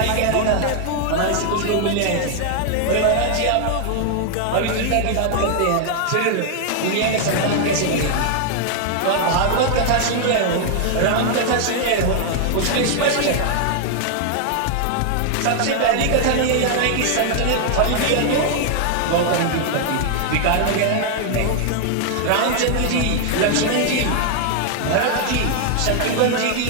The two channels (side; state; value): both; different; correlation 0.00